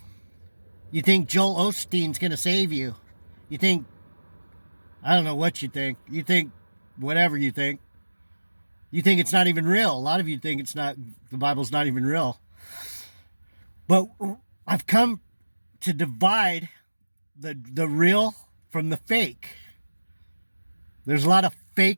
You think Joel Osteen's going to save you. You think, I don't know what you think. You think whatever you think. You think it's not even real. A lot of you think the Bible's not even real. But I've come to divide the real from the fake. There's a lot of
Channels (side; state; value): both; inverted; correlation -1.00